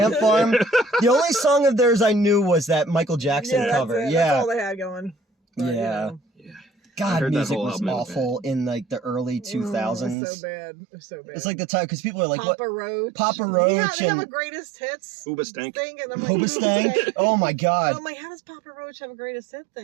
Farm. The only song of theirs I knew was that Michael Jackson cover. Yeah, that's all they had going. But, yeah. God, music was awful in like the early 2000s. So bad. So bad. It's like the time, because people are like, Papa Roach. Papa Roach. Yeah, they have a greatest hits Hoobastank. thing. And I'm like, Hoobastank? Oh my God. I'm like, how does Papa Roach have a greatest hit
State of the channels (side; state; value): left; drops out; at 10.2 s